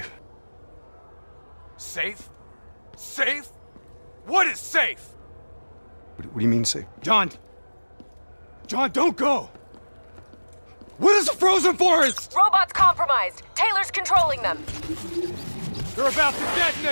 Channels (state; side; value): inverted; both; correlation -1.00